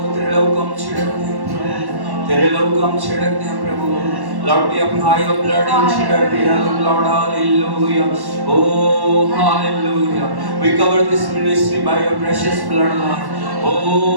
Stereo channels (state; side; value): late; left; 1.1 ms